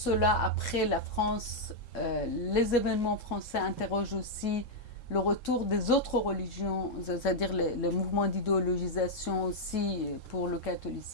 après la France, les événements français interrogent aussi le retour des autres religions, c'est-à-dire les mouvements d'idéologisation aussi pour le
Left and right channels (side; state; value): right; late; 3.7 ms